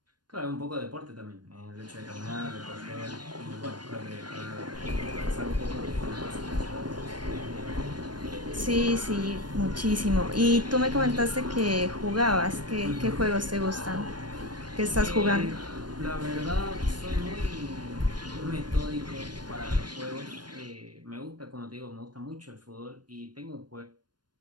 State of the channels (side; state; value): left; late; 0.70 ms